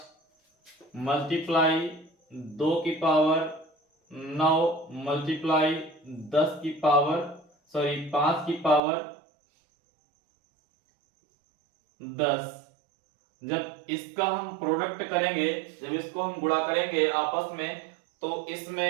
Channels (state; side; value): drops out; left; at 8.8 s